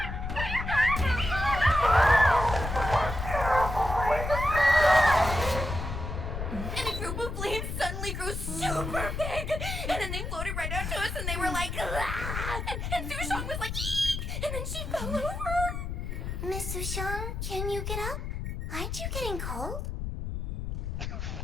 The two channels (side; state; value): left; noise; rumble, 4 dB below the sound